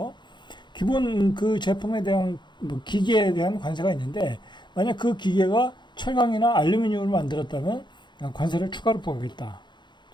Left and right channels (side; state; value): right; late; 0.22 ms